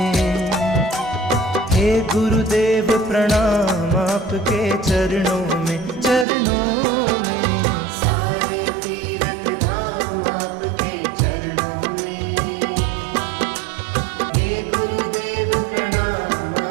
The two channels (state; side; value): drops out; left; at 6.2 s